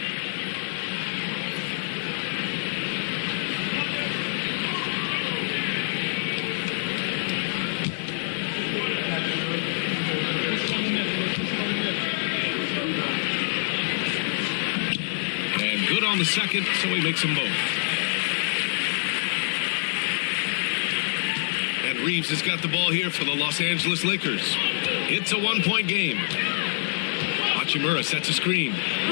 And good on the second, so he makes them both. Reeves has got the ball here for the Los Angeles Lakers. It's a 1-point game. Hachimura sets a screen.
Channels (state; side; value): silent; right; digital silence